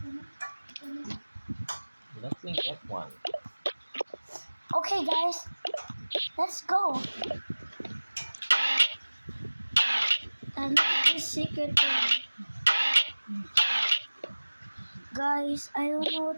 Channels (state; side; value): inverted; both; correlation -1.00